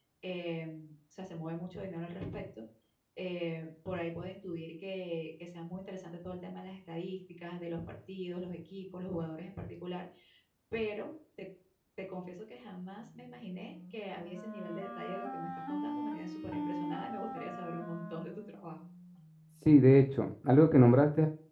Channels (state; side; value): identical; both; correlation 1.00